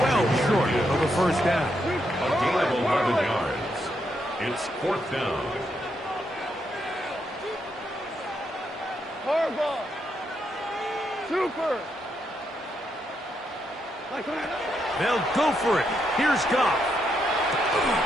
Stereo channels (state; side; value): normal; both; correlation 0.79